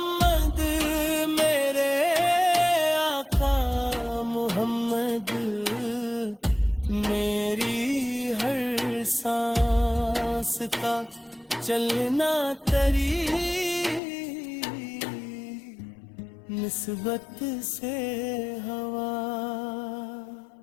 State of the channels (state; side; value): drops out; right; at 14.0 s